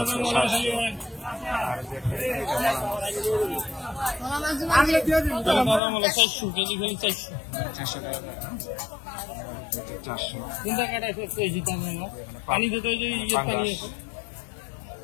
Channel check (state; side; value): drops out; right; at 5.8 s